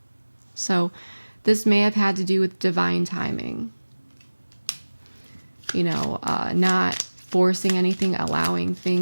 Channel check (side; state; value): both; inverted; correlation -1.00